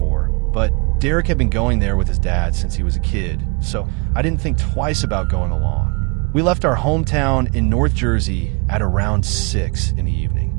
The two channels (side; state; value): left; quieter; 31.2 dB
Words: but Derek had been going there with his dad since he was a kid, so I didn't think twice about going along. We left our hometown in North Jersey at around 6 in the evening.